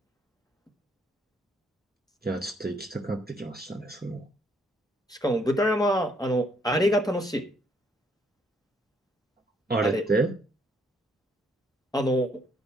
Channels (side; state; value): both; normal; correlation 0.69